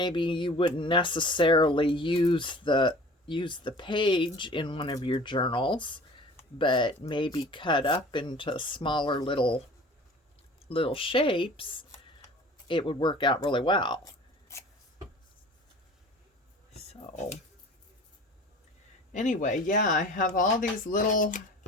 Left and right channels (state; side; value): normal; both; correlation 0.44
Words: you wouldn't necessarily use the page in one of your journals, but maybe cut up into smaller little shapes. It would work out really well. So anyway, yeah, I have all these little